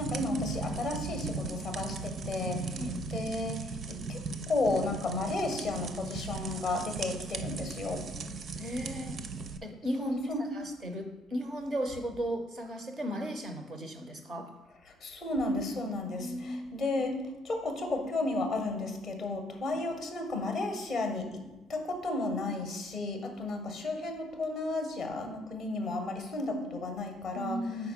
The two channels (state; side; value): normal; both; correlation 0.65